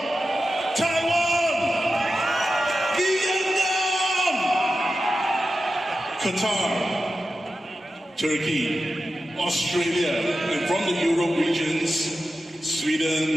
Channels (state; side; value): normal; both; correlation 0.92